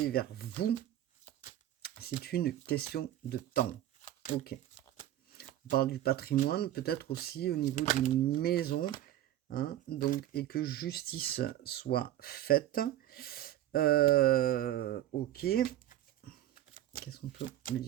vers vous. C'est une question de temps. Ok. On parle du patrimoine, peut-être aussi au niveau d'une maison. Hein, donc, et que justice soit faite. Ok. Qu'est-ce qu'on peut me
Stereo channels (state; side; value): quieter; left; 13.0 dB